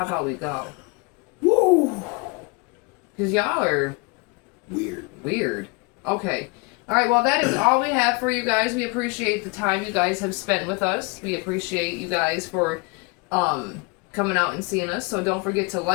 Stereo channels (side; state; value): right; quieter; 29.0 dB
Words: about we go? Woo! Because y'all are weird. Okay. Alright, well, that is all we have for you guys. We appreciate the time you guys have spent with us. We appreciate you guys for coming out and seeing us. So don't forget to